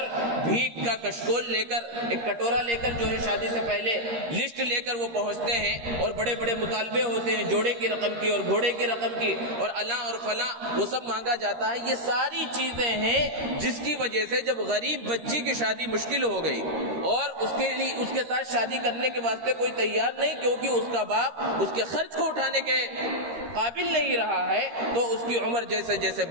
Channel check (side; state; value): left; late; 13 ms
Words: بھیک کا کشکول لے کر، ایک کٹورا لے کر جو ہے شادی سے پہلے لسٹ لے کر وہ پہنچتے ہیں، اور بڑے بڑے مطالبے ہوتے ہیں، جوڑے کی رقم کی اور گھوڑے کی رقم کی اور الاں اور فلاں، وہ سب مانگا جاتا ہے۔ یہ ساری چیزیں ہیں جس کی وجہ سے جب غریب بچی کی شادی مشکل ہو گئی اور اس کے ساتھ شادی کرنے کے واسطے کوئی تیار نہیں، کیونکہ اس کا باپ اس کے خرچ کو اٹھانے کے قابل نہیں رہا ہے، تو اس کی عمر جیسے جیسے